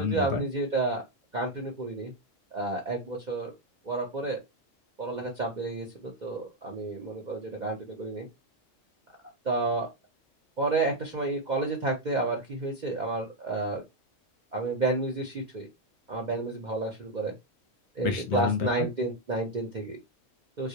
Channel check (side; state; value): both; normal; correlation 0.02